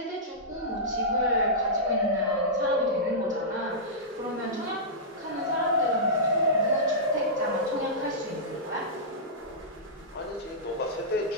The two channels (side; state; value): both; normal; correlation -0.15